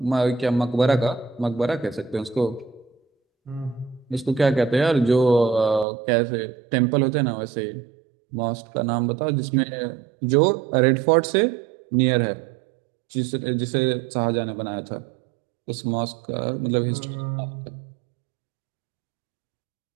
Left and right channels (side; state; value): left; drops out; at 5.9 s